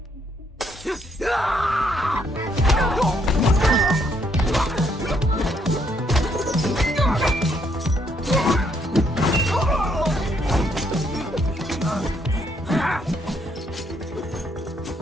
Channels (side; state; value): both; normal; correlation 0.71